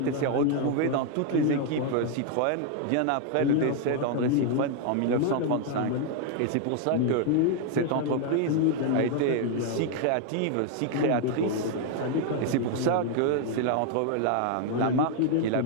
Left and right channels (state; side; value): different; both; correlation 0.00